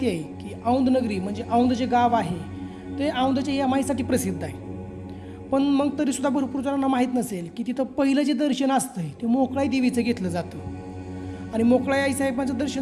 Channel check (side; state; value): both; identical; correlation 1.00